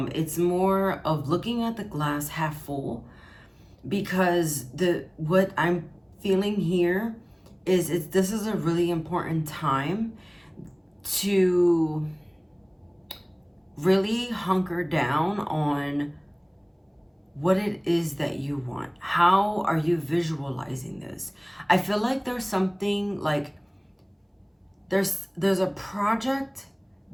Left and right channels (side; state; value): both; identical; correlation 1.00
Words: It's more of looking at the glass half full, because what I'm feeling here is this is a really important time to really hunker down on what it is that you want. How are you visualizing this? I feel like there's something like there's a project